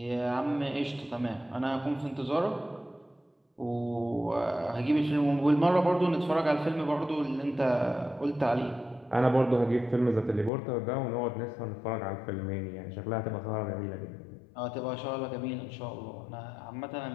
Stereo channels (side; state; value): right; drops out; at 10.5 s